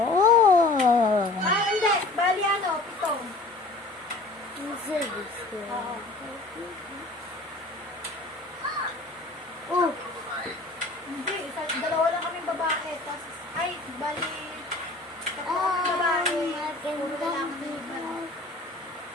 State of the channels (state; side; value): quieter; right; 3.0 dB